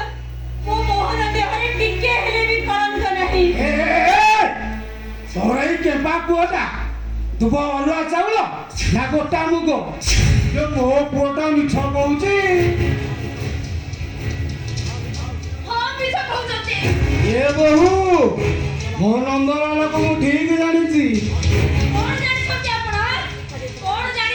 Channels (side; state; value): both; identical; correlation 1.00